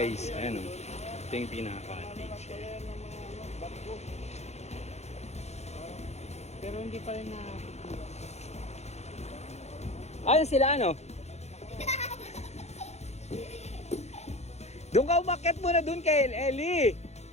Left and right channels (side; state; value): right; late; 0.32 ms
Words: Ayan o. Ito yung pinaka-cottage. Barko. Pero hindi pa rin na... Ayan sila ano? Doon ka umakyat muna doon kay Ellie.